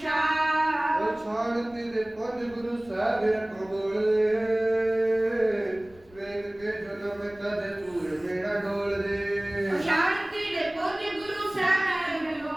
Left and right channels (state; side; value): noise; left; rumble, 25 dB below the sound